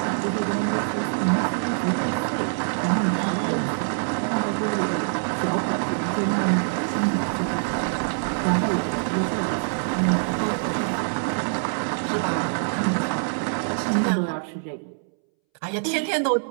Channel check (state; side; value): silent; left; 62 dB below the other